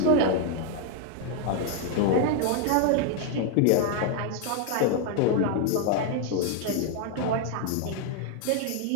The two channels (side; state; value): both; different; correlation 0.00